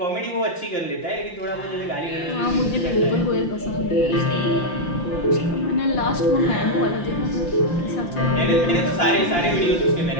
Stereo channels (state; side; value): late; right; 5.8 ms